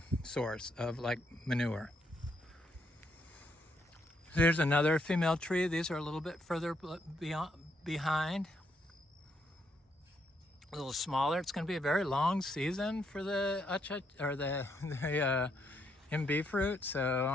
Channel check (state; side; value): normal; both; correlation 0.76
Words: source of like manure. There's another female tree. These are a little bit further behind, a little smaller. It's going to be a very long season for the Imbe fruit, so